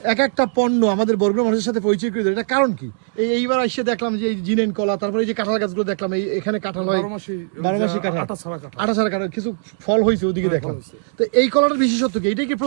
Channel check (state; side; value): silent; left; 63 dB below the other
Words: এক একটা পণ্য আমাদের বরগুনা মানুষের সাথে পরিচয় করে দেয়, এটা কারণ কি? এইবার এসে দেখলাম যে এই G9 কলা, তারপরে এই যে কাঁঠাল গাছগুলো দেখলাম, এই এখানে কাঁঠাল হয় 12 মাসি কাঁঠাল, আটা ছাড়া কাঁঠাল, কিছু ফল হয়েছে ওদিকে দেখলাম। তো এই কলাটার বিশেষত্ব কি? এটাই কি